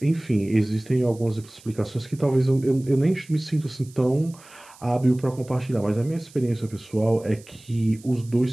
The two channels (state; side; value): noise; right; hiss, 24 dB below the sound